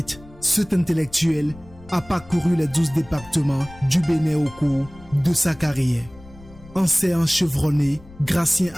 cet intellectuel a parcouru les 12 départements du Bénin au cours de sa carrière. Enseignant chevronné, Gratien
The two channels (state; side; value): noise; left; rumble, 21 dB below the sound